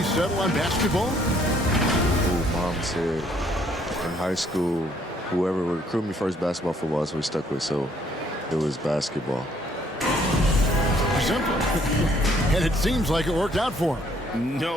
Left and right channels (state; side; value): normal; both; correlation 0.65